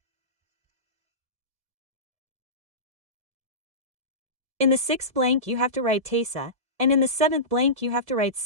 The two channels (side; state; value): left; late; 1.7 ms